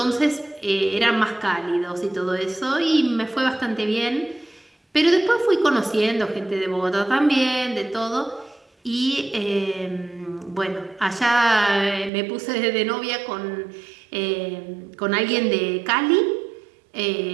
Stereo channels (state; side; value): drops out; left; at 12.1 s